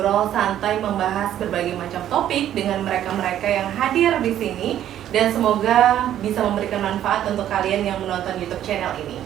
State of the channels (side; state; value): left; quieter; 11.4 dB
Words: santai membahas berbagai macam topik dengan mereka-mereka yang hadir di sini, dan semoga bisa memberikan manfaat untuk kalian yang menonton YouTube channel ini.